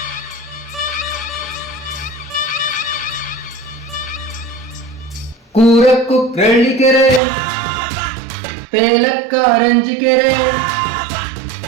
ಕೂರಕ್ಕು ಕ್ರಳ್ಳಿಕೆರೆ ತೇಲಕ್ಕ ರಂಜಿಕೆರೆ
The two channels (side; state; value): left; drops out; at 7.2 s